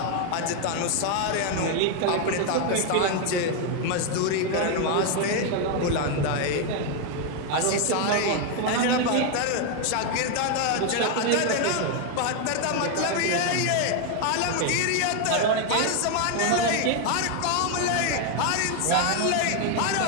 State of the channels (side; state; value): both; different; correlation 0.01